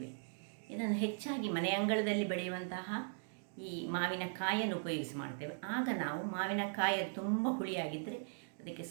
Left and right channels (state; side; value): silent; left; digital silence